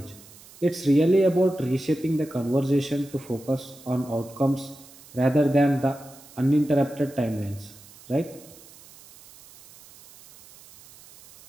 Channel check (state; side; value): noise; right; hiss, 22 dB below the sound